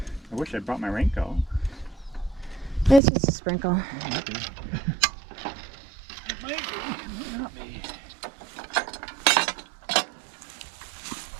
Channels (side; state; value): left; drops out; at 3.0 s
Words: I wish I brought my raincoat. It's just a sprinkle. It might be. It might be. It might not be.